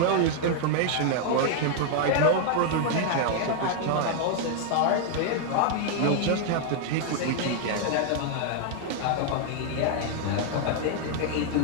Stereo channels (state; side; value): different; both; correlation 0.00